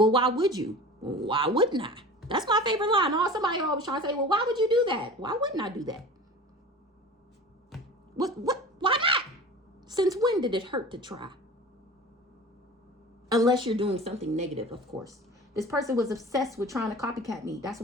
why would you? Why wouldn't I? That's my favorite line. Oh, somebody always trying to say, well, why would you do that? Why wouldn't I do that? What? Why not? Since when did it hurt to try? Unless you're doing something negative, of course. This person was obsessed with trying to copycat me. That's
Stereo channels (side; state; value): both; normal; correlation 0.37